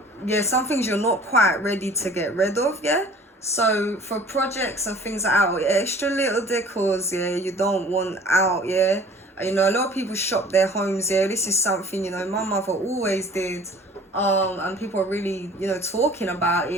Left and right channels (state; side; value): normal; both; correlation 0.48